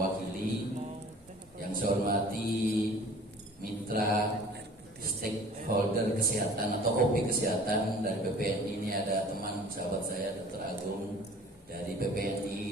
Yang saya hormati mitra stakeholder kesehatan atau OP kesehatan dari PPNI. Ini ada teman sahabat saya Dr. Agung dari PPNI,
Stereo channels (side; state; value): both; normal; correlation 0.48